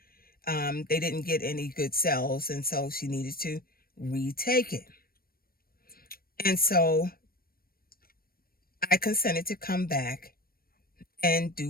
they didn't get any good cells. And so she needed to retake it. And so I consented to come back and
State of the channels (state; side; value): late; right; 0.43 ms